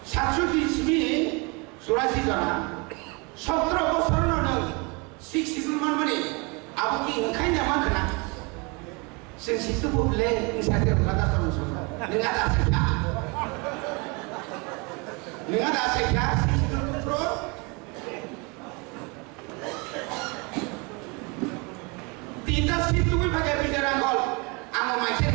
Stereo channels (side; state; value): left; quieter; 29.8 dB